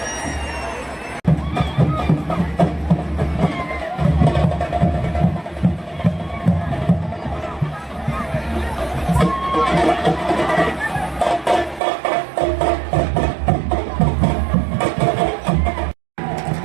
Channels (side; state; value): left; drops out; at 11.8 s